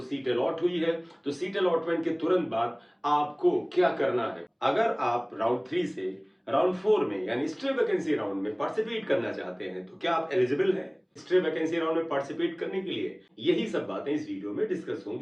अलॉट हुई है तो सीट अलॉटमेंट के तुरंत बाद आपको क्या करना है। अगर आप राउंड 3 से राउंड 4 में यानी स्ट्रे वैकेंसी राउंड में पार्टिसिपेट करना चाहते हैं तो क्या आप एलिजिबल हैं स्ट्रे वैकेंसी राउंड में पार्टिसिपेट करने के लिए? यही सब बातें इस वीडियो में डिस्कस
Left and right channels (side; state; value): both; identical; correlation 1.00